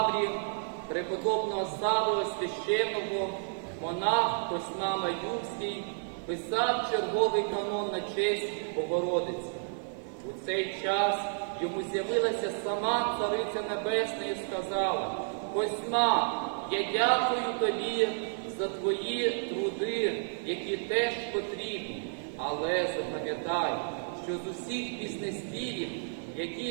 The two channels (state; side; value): silent; left; digital silence